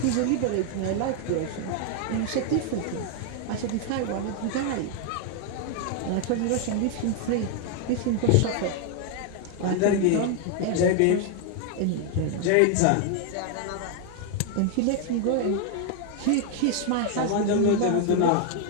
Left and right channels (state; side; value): different; both; correlation 0.00